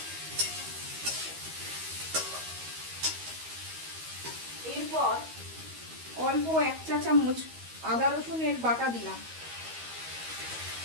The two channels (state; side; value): late; left; 13 ms